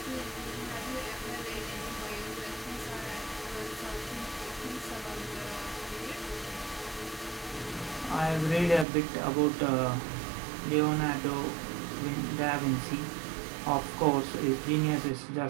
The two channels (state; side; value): drops out; left; at 8.8 s